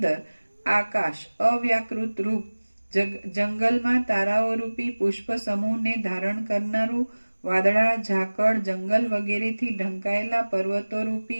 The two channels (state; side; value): inverted; both; correlation -1.00